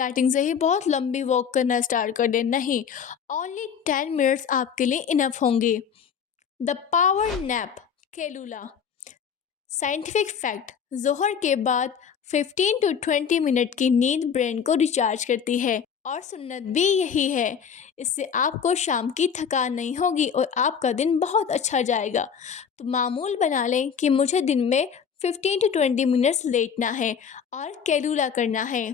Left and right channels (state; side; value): quieter; right; 7.2 dB